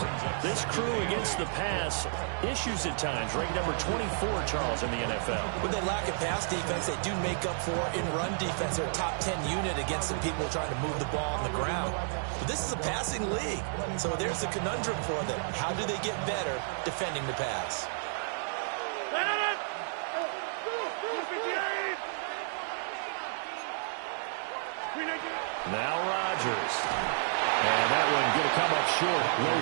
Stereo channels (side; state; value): left; silent; 56 dB below the other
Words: This crew against the pass, issues at times. Ranked number 24, Charles, in the NFL. With the lack of pass defense, they do make up for in run defense. They're a top 10 unit against the people trying to move the ball on the ground. But this is a passing league. So there's a conundrum for them. How do they get better defending the pass? Now Rodgers. And that one going to come up short. Low